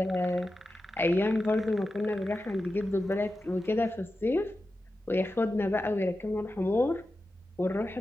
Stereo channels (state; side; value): normal; both; correlation 0.92